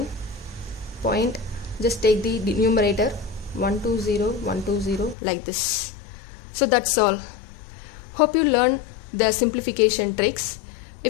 point, just take the numerator 120 like this. So that's all. Hope you learned the simplification tricks.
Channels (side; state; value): right; drops out; at 5.2 s